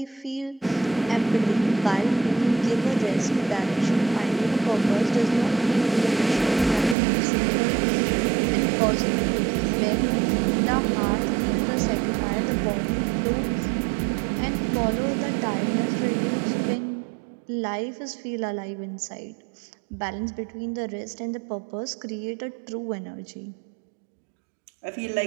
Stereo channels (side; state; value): left; drops out; at 7.0 s